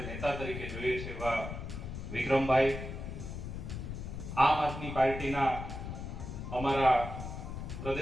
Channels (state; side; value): noise; left; rumble, 7 dB below the sound